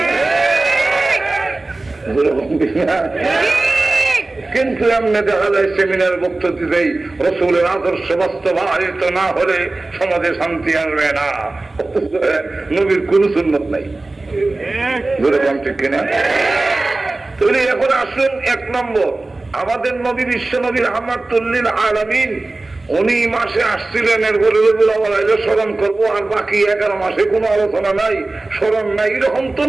কিন্তু এমনি দেখা যায় সেমিনার বক্তব্য দিতেই রসুলের আদর্শ বাস্তবায়িত না হলে সমাজে শান্তি আসবে না, নবীর কোন সুন্নত নাই। ঠিক কিনা? তাহলে এখন আসুন, এক নম্বর, আমাদের নবী বিশ্ব নবী রাহমাতুল্লিল আলামিন উনি মাসে আসছিলেন, এর বলে স্মরণ করবো, আর বাকি 11 মাসে কোনো আলোচনা নাই, স্মরণ নাই, এরকম তো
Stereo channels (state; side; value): quieter; left; 3.1 dB